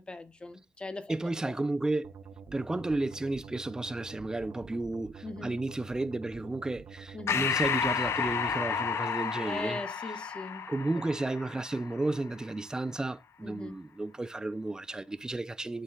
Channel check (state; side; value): normal; both; correlation 0.73